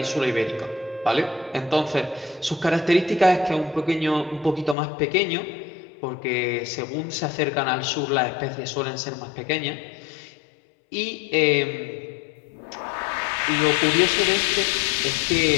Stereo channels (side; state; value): right; drops out; at 4.8 s